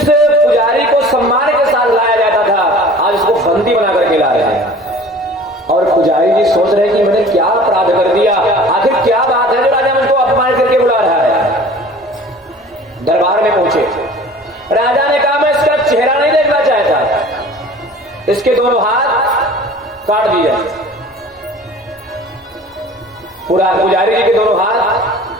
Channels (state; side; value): normal; both; correlation 0.45